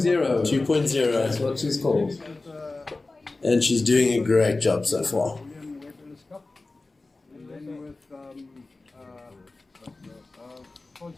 2.0. That's what she's called. And she's doing a great job so far.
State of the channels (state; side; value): quieter; right; 3.3 dB